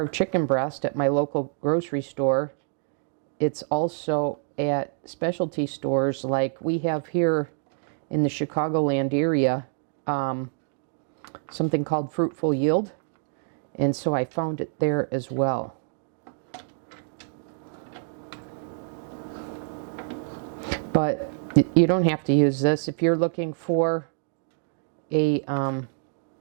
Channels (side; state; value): left; silent; digital silence